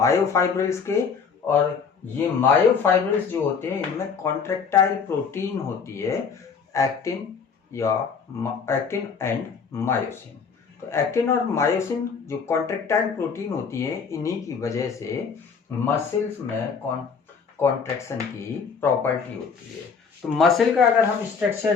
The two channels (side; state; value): right; quieter; 5.8 dB